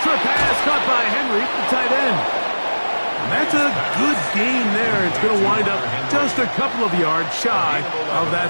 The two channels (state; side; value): inverted; both; correlation -1.00